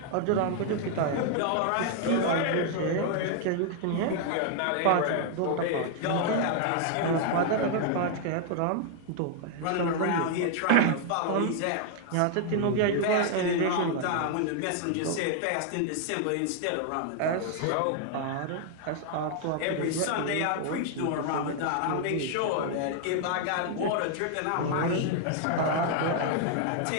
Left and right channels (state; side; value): different; both; correlation 0.00